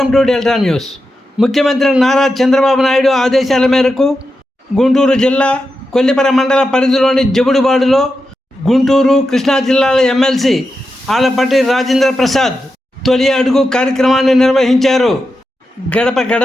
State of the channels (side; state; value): both; normal; correlation 0.89